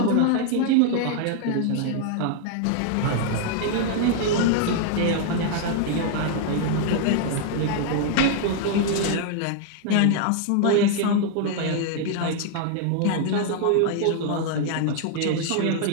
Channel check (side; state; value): both; different; correlation 0.00